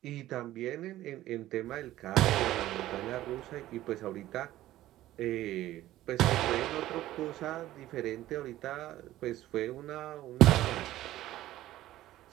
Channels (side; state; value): left; quieter; 14.8 dB